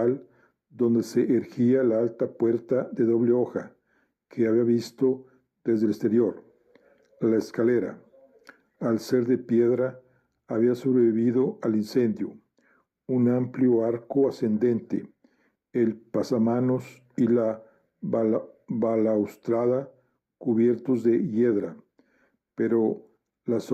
donde se erguía la alta puerta de doble hoja que había visto desde el exterior. La escalera, al ser de piedra, había sobrevivido al incendio. Un amplio arco ascendente, el pasamanos y la balaustrada cubiertos de hiedra, pero las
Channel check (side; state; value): both; identical; correlation 1.00